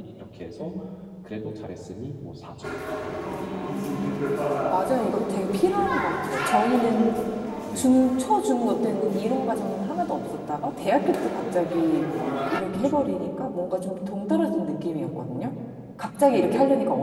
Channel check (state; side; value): identical; both; correlation 1.00